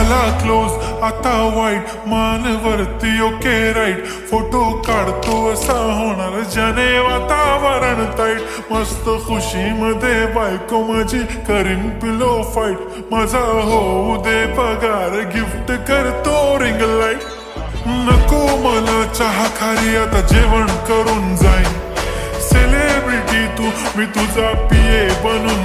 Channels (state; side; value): identical; both; correlation 1.00